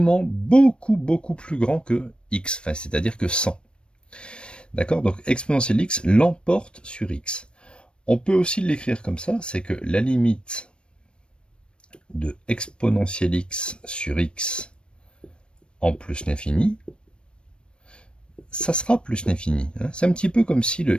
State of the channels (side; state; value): right; late; 0.056 ms